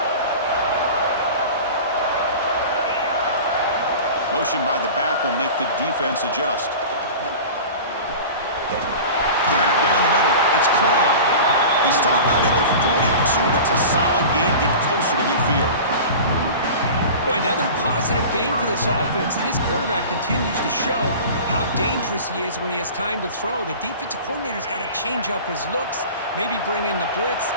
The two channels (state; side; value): inverted; both; correlation -0.36